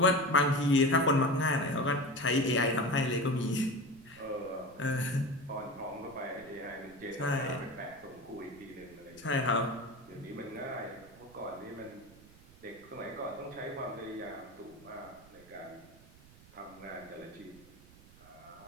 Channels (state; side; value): noise; right; rumble, 23 dB below the sound